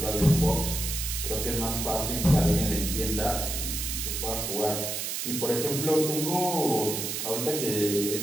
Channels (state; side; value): noise; right; hiss, 3 dB below the sound